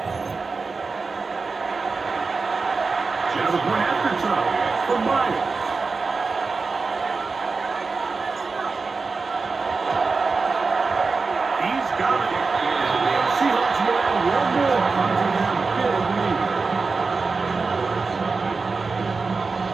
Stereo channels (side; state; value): left; quieter; 4.3 dB